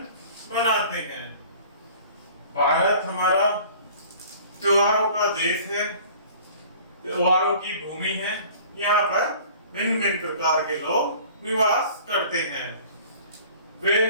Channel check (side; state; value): both; inverted; correlation -0.48